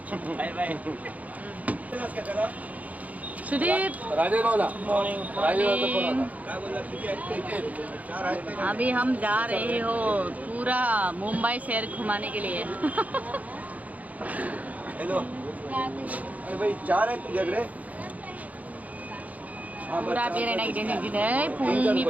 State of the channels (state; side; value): late; left; 0.074 ms